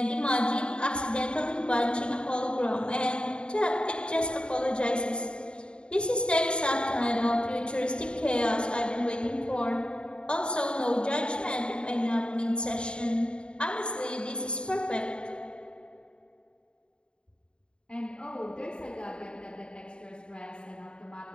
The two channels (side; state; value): right; late; 0.052 ms